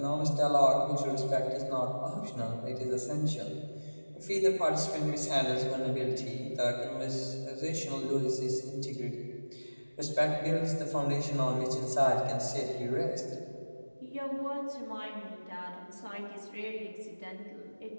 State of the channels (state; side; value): inverted; both; correlation -1.00